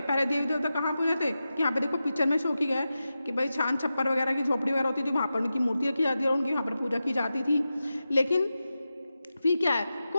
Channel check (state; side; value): inverted; both; correlation -0.92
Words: पहले देवी देवता कहाँ पूजे थे कि यहाँ पे देखो पिक्चर में शो किया है कि भाई छान छप्पर वगैरह की झोपड़ी वगैरह होती थी, वहाँ पर उनकी मूर्तियाँ की जाती है और उनकी वहाँ पर पूजा की जाती थी। लेकिन फिर क्या है,